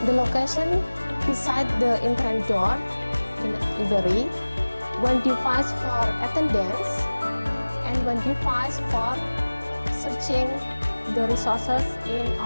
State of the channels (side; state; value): both; inverted; correlation -1.00